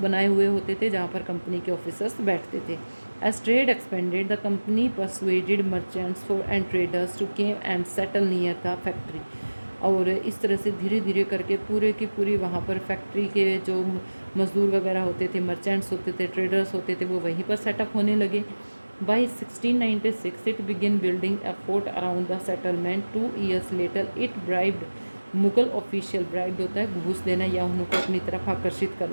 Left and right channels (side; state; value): both; inverted; correlation -1.00